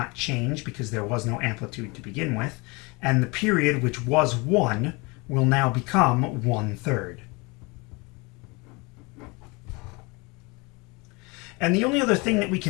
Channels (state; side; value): quieter; right; 27.3 dB